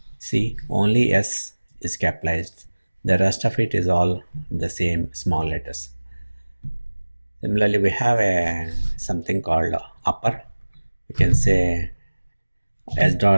See, only S is capitalized, the rest of it is all the same small letters. Similarly, we have something called upper. We can say S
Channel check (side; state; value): both; inverted; correlation -1.00